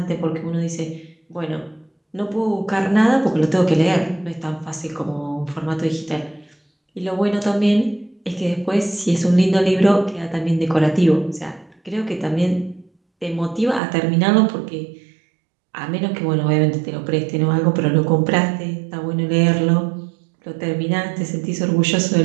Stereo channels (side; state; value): left; drops out; at 13.8 s